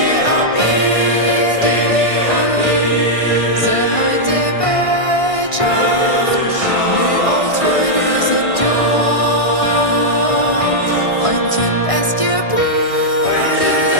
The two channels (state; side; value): late; right; 1.6 ms